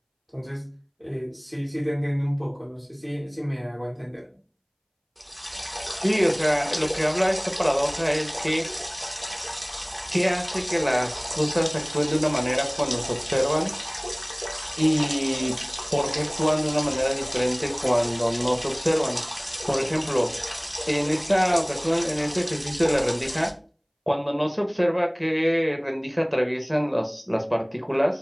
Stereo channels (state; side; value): identical; both; correlation 1.00